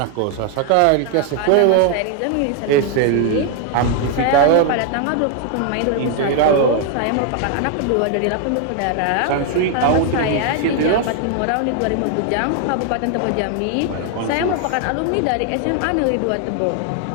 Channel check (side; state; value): both; different; correlation 0.00